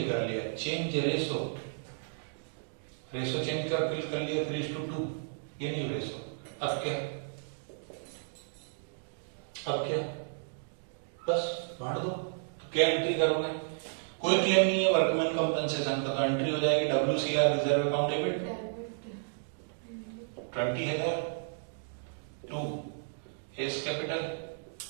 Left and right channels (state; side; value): silent; left; digital silence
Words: कर लिया, चेंज रेशो चेंज कर लिया 3:2, ये न्यू रेशो। अब क्या, बस बांट दो, तो क्या एंट्री करोगे, कोई क्लेम नहीं है वर्कमैन कंपनसेशन का, तो एंट्री हो जाएगी WCR reserve account debit 20,000 to S capital